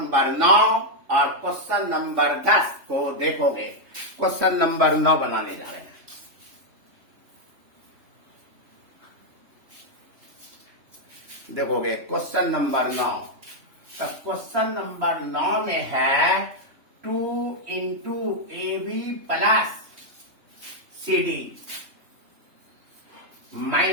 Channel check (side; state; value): left; late; 3.2 ms